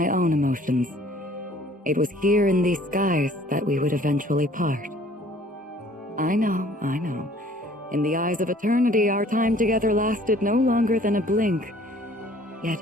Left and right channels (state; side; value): normal; both; correlation 0.55